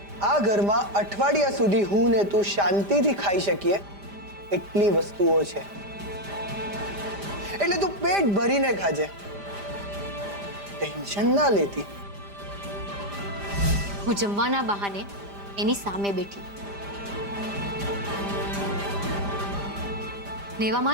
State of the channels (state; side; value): late; left; 5.0 ms